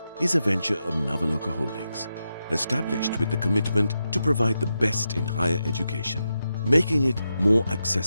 is a venture of Nawaloka Holdings, established with the commitment to provide the best in higher education, making it more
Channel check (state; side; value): inverted; both; correlation -0.88